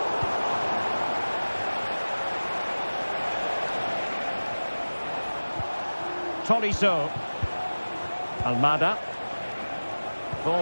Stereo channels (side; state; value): both; inverted; correlation -1.00